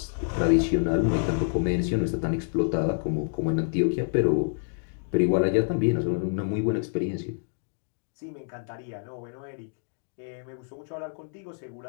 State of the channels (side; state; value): right; silent; digital silence